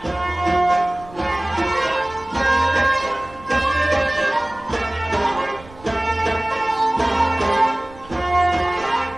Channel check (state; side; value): noise; right; rumble, 21 dB below the sound